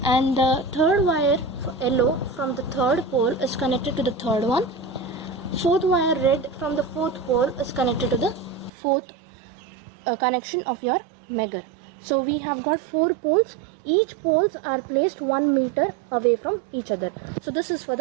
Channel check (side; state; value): left; drops out; at 8.7 s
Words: and the third wire yellow from the third pole is connected to the third one. Fourth wire red from the fourth pole is connected to the fourth connection of your Megger. So we have got 4 poles. Each poles are placed 1 meter away from each other. So this is for